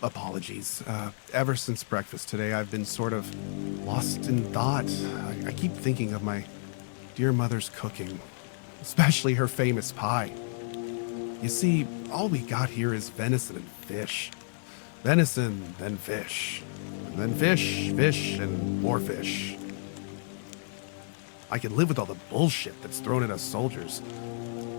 apologies. Ever since breakfast today, I've been sort of lost in thought. I keep thinking of my dear mother's cooking, especially her famous pie. You see, all we got here is venison and fish. Venison, then fish. And then fish, fish, and more fish. I can live with all the bullshit that's thrown at us soldiers.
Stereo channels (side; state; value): right; silent; 58 dB below the other